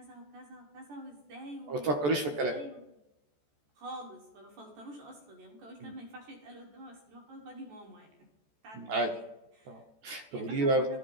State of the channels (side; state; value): left; late; 14 ms